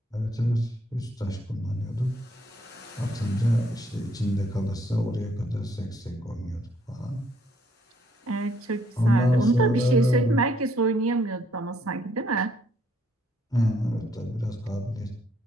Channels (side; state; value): both; normal; correlation 0.68